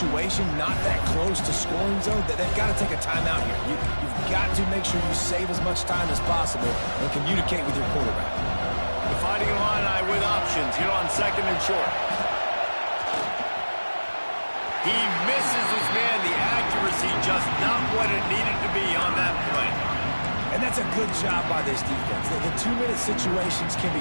not that close to scoring zone, they've got to take a timeout here. You've got to make sure you save as much time as possible and communicate with your quarterback. The Fighting Illini with options here on 2nd and short. He misses his man. The accuracy just not what it needed to be on that play. And that's a good job by this defense. The 2-minute situations can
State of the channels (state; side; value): inverted; both; correlation -1.00